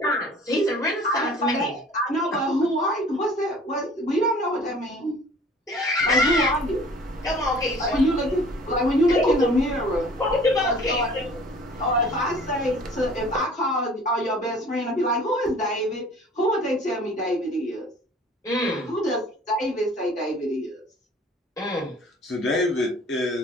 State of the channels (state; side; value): normal; both; correlation 0.49